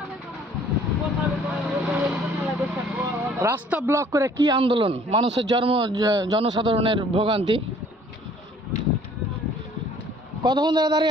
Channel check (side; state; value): both; normal; correlation 0.56